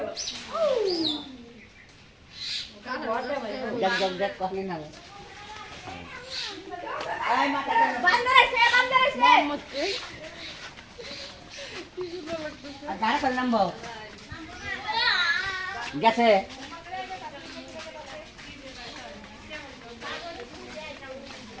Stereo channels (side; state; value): both; identical; correlation 1.00